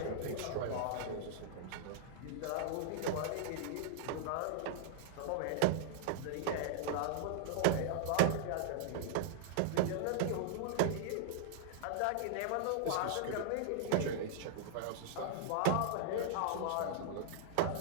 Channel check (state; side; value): different; both; correlation -0.01